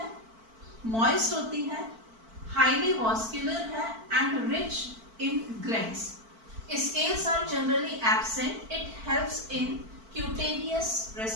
मॉइस्ट होती है, हाईली वास्कुलर है and rich in glands. Scales are generally absent. It helps in cutaneous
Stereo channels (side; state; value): left; late; 4.5 ms